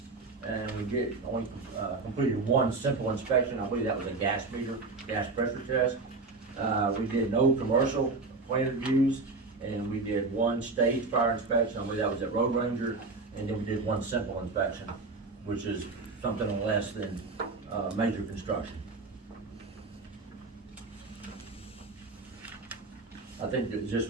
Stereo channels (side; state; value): left; quieter; 3.7 dB